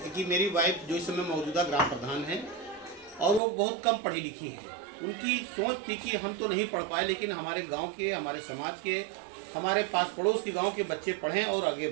कि मेरी वाइफ जो इस समय मौजूदा ग्राम प्रधान है और वो बहुत कम पढ़ी लिखी है। उनकी सोच थी कि हम तो नहीं पढ़ पाए, लेकिन हमारे गांव के, हमारे समाज के, हमारे पास पड़ोस के गांव के बच्चे पढ़ें और आगे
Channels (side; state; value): left; drops out; at 3.4 s